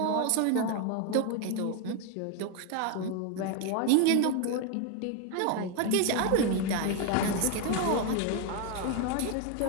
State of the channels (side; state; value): both; different; correlation 0.01